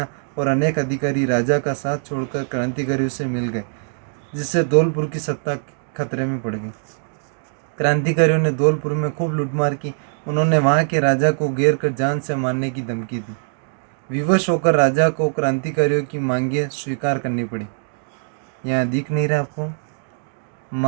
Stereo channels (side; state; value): left; silent; digital silence